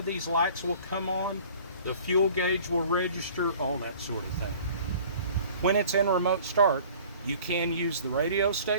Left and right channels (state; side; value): inverted; both; correlation -0.48